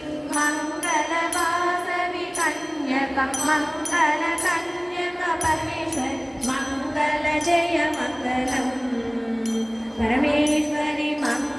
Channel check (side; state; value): both; identical; correlation 1.00